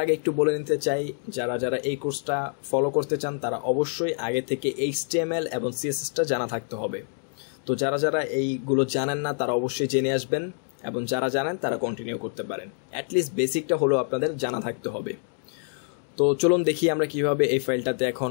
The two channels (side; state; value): right; silent; 61 dB below the other